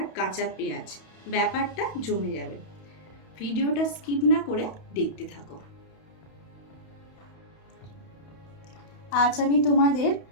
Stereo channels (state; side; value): late; right; 31 ms